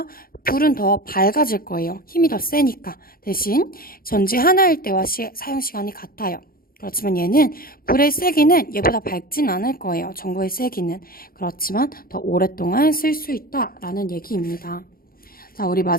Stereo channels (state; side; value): late; right; 0.42 ms